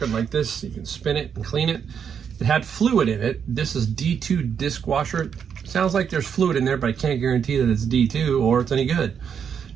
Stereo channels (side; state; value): left; quieter; 7.4 dB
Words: like this. You can spin it and clean it. It had fluid in it. This is D2 disc washer. Sounds like there's fluid in there, but I can't guarantee that it's D2 or it's any good.